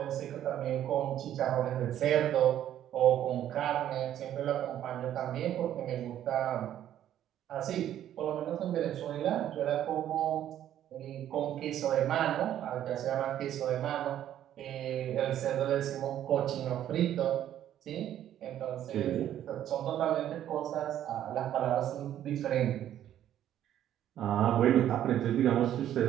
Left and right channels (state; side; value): quieter; left; 11.3 dB